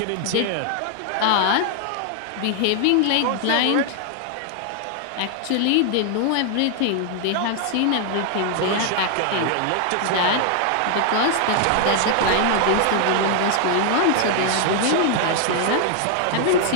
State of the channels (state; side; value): different; both; correlation 0.00